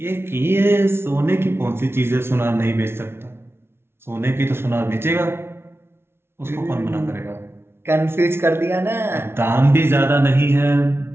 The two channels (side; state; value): left; late; 0.12 ms